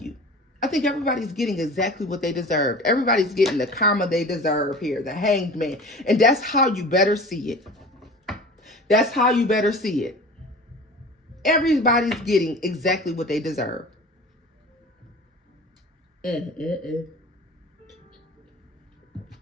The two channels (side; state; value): both; normal; correlation 0.39